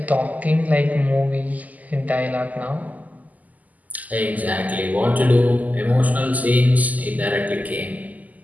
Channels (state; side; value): late; left; 0.078 ms